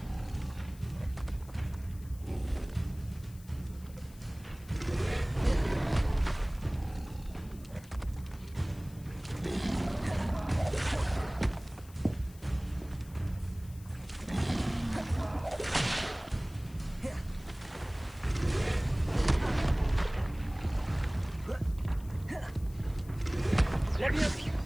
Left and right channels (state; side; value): noise; left; hiss, 23 dB below the sound